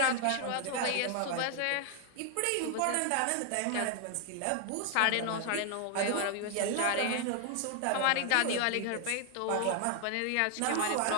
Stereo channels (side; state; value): both; different; correlation 0.00